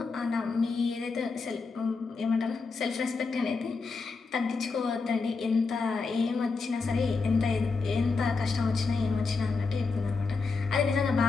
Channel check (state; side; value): quieter; right; 4.4 dB